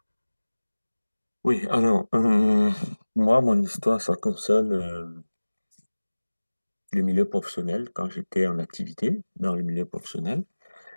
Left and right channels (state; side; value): inverted; both; correlation -1.00